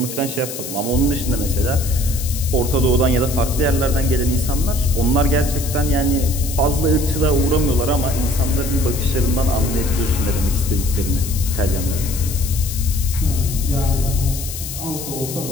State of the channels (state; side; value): noise; left; hiss, 9 dB below the sound